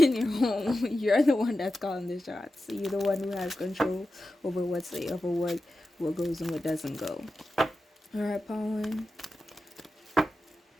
your home. You're the one that's calling the shots. You're the one who has control over what goes and what doesn't go. All right, Pawan.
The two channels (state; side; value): normal; both; correlation 0.92